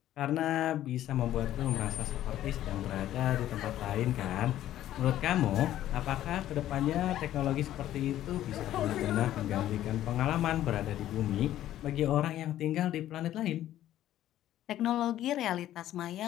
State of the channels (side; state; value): right; quieter; 12.8 dB